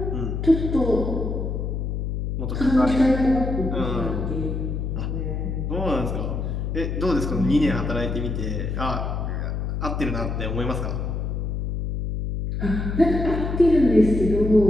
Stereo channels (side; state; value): left; noise; hum, 2 dB below the sound